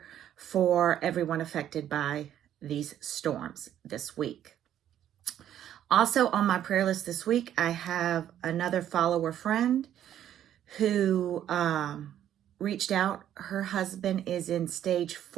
for everyone affected by these storms this week. Also on my prayer list this week, I have another follower friend who reached out. Her husband is in stage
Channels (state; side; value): quieter; left; 10.9 dB